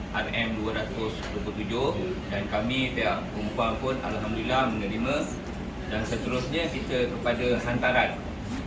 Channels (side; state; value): both; identical; correlation 1.00